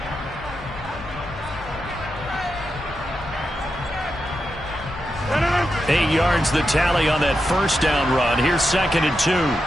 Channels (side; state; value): both; normal; correlation 0.87